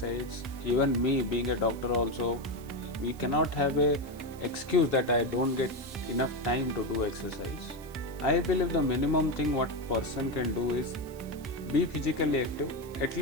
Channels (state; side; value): noise; right; hiss, 22 dB below the sound